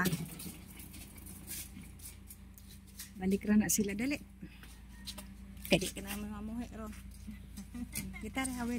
Balik ra na sila dali. Kadi ka na mamuhi ro. Kita ra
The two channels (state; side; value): identical; both; correlation 1.00